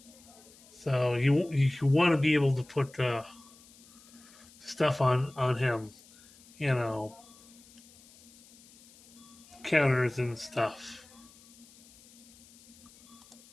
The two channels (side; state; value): left; noise; hiss, 24 dB below the sound